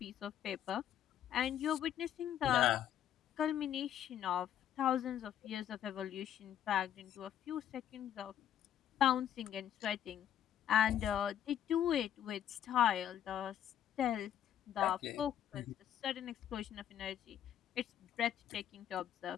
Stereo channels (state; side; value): quieter; right; 10.5 dB